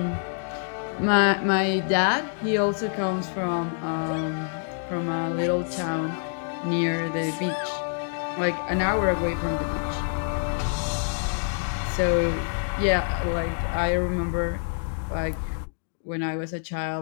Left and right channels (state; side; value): silent; right; digital silence